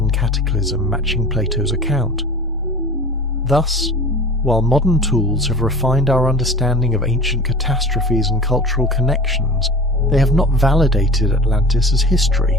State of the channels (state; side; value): normal; both; correlation 0.39